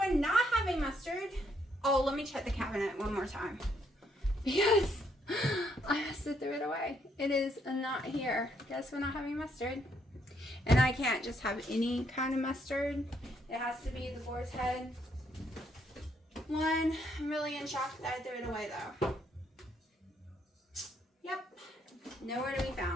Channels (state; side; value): normal; both; correlation 0.72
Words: not having mustard. Oh, let me check the cabinet one more time. Because I must have threw it away. It is not here. Guess we're not having mustard. And I can't just have any kind of mustard. It has to be the Boar's Head one. I'm really in shock that I threw it away though. Yep. Nowhere to be